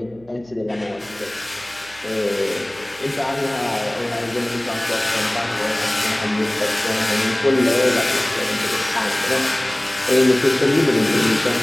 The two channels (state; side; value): noise; right; hum, 27 dB below the sound